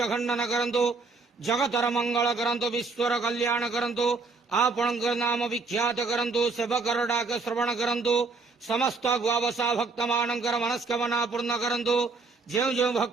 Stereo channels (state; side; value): quieter; left; 4.1 dB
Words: खंडन करंतु। जगतर मंगल करंतु। विश्वर कल्याण करंतु। आपणक नाम विख्यात करंतु। सेवकर डाक श्रवण करंतु। समस्त गुआवसा भक्त मानकर मनस्कामना पूर्ण करंतु। जो जो